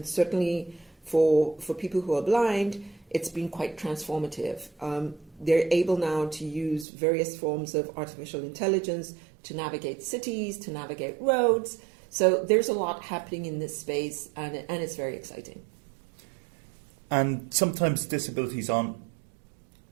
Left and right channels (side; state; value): left; drops out; at 6.9 s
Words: certainly for people who are blind, it's been quite transformative. They're able now to use various forms of artificial intelligence to navigate cities, to navigate roads. So there's a lot happening in this space, and it's very exciting. And sometimes disabilities aren't